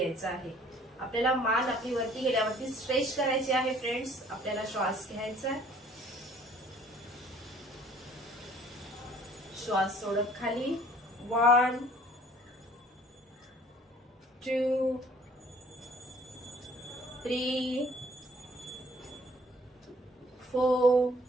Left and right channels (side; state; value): both; normal; correlation 0.56